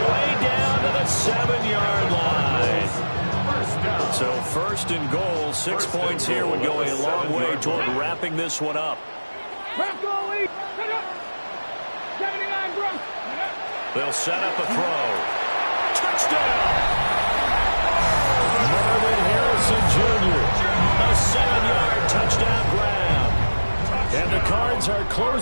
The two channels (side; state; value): both; inverted; correlation -1.00